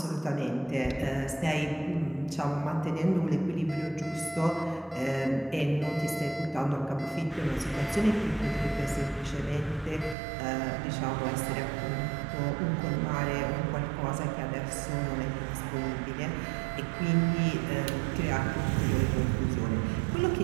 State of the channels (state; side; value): drops out; left; at 10.2 s